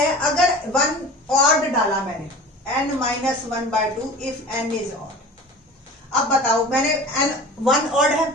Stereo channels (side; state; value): both; normal; correlation 0.38